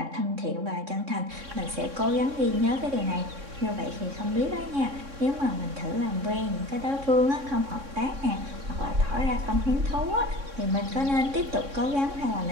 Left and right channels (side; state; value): left; late; 3.6 ms